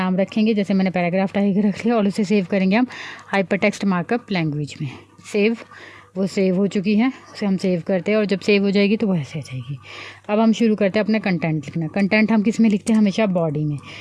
रखेंगे, जैसे मैंने पैराग्राफ टाइप रख लिया, और उसे सेव करेंगे हम हाइपरटेक्स्ट मार्कअप लैंग्वेज में। सेव, वो सेव हो चुकी है, उसे हम सेव करते हैं, और जब सेव हो जाएगी तो वो ऐसे आ जाएगी। अब हम शुरू करते हैं अपना कंटेंट लिखना। कंटेंट हम किस में लिखते हैं, हमेशा बॉडी में।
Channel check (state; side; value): identical; both; correlation 1.00